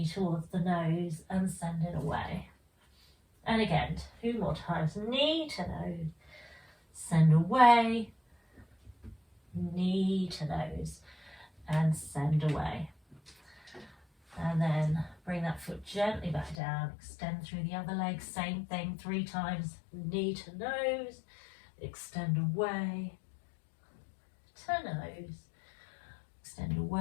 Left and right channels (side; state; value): right; drops out; at 16.6 s